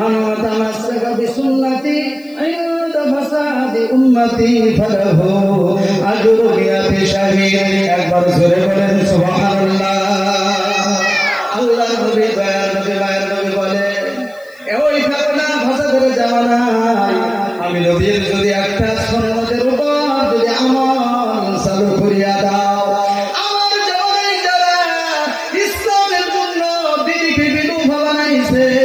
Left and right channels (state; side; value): noise; left; hiss, 29 dB below the sound